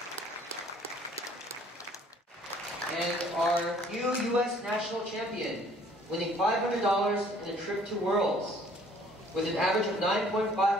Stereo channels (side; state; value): both; normal; correlation 0.58